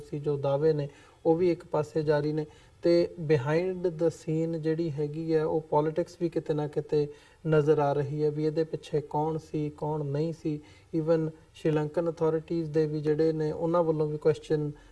ਸੀ ਜੋ ਦਾਅਵੇ ਨੇ ਉਹ ਵੀ ਇੱਕ ਪਾਸੇ ਜਾਰੀ ਨੇ, ਤੇ ਬਿਹਾਈਂਡ ਦ ਸੀਨ ਜਿਹੜੀ ਹੈਗੀ ਹੈ ਉਹ ਪੋਲੀਟਿਕਸ ਵੀ ਕਿਤੇ ਨਾ ਕਿਤੇ ਨਜ਼ਰ ਆ ਰਹੀ ਹੈ ਵੀ ਇਹਦੇ ਪਿੱਛੇ ਕੌਣ ਸੀ, ਕੌਣ ਨਹੀਂ ਸੀ। ਈਵਨ ਸ਼੍ਰੀਲੰਕਨ ਅਥਾਰਟੀਜ਼ ਦੇ ਵੀ ਜਿਹੜੇ ਨੇ ਉਹਨਾਂ ਵੱਲੋਂ ਵੀ ਕੁਐਸਚਨ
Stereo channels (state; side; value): identical; both; correlation 1.00